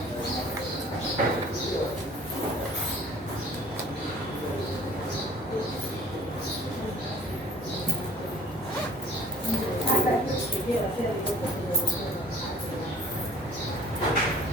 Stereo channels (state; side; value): normal; both; correlation 0.51